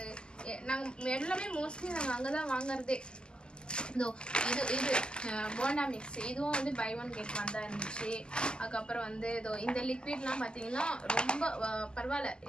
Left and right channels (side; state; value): right; late; 0.047 ms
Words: நாங்கள் எல்லாமே மோஸ்ட்லி நாங்கள் அங்கே தான் வாங்குறதே. இது போண்டா மிக்ஸ் இதுவும் வந்து பை ஒன் கெட் ஒன் தான் இருந்துச்சு. அதுக்கப்புறம் வந்து இந்த லிக்விட்லாம் பார்த்தீங்கன்னா ரொம்ப பரவாயில்ல.